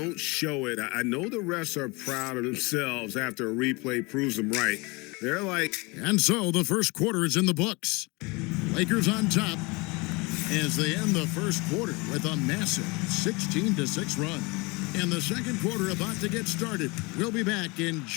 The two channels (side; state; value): right; quieter; 26.5 dB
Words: show it, I know the refs are proud of themselves after a replay proves them right. They're like... And so the first quarter is in the books. Lakers on top as they end the first quarter with a massive 16-6 run. And the second quarter about to get started. We'll be back in